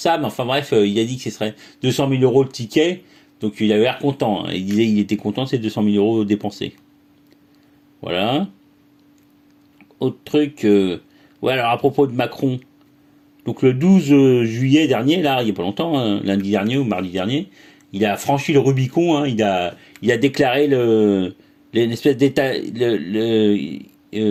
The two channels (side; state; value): both; identical; correlation 1.00